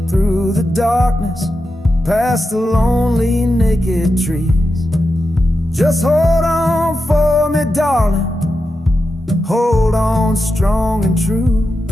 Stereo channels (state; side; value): normal; both; correlation 0.89